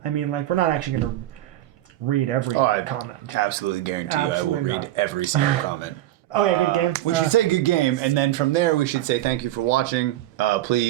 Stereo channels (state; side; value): quieter; left; 14.2 dB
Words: I mean, like, we're not actually gonna read every I comment. absolutely guarantee Absolutely I will read not. every single comment. Oh yeah, good game. We should say good game, and then from there we should say thank you for watching.